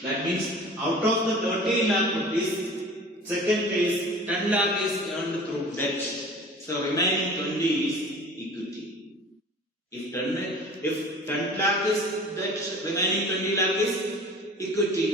That means out of the 30 lakh rupees, second case 10 lakh is earned through debt. So remaining 20 is equity. If 10 lakh is debt, remaining 20 lakh is equity.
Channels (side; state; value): both; normal; correlation 0.42